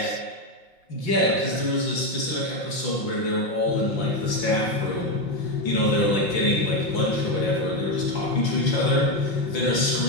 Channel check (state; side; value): late; right; 5.9 ms